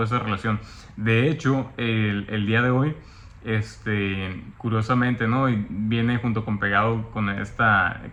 de relación. De hecho, el día de hoy, curiosamente, ¿no?, y viene junto con pegado con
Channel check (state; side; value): identical; both; correlation 1.00